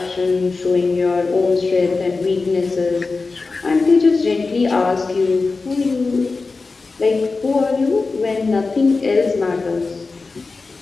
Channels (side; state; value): right; quieter; 4.0 dB